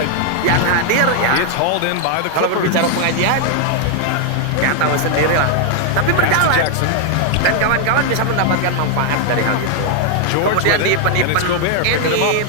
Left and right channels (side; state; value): both; different; correlation 0.00